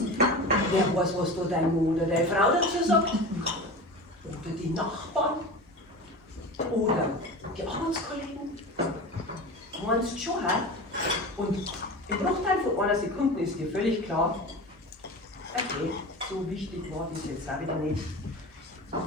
Wer weiß, was da dein Mann oder deine Frau dazu sagt. Oder die Nachbarn. Oder die Arbeitskollegen. Meinst du schon, hä? Und im Bruchteil von einer Sekunde ist dir völlig klar, okay, so wichtig war das jetzt auch wieder nicht.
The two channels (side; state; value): both; normal; correlation 0.31